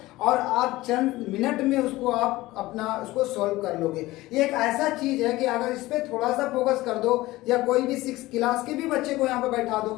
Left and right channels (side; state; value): right; quieter; 18.4 dB